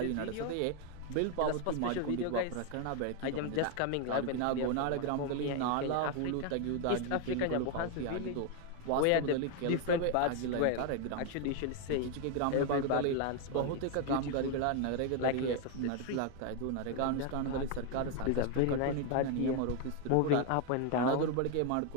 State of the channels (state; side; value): different; both; correlation 0.01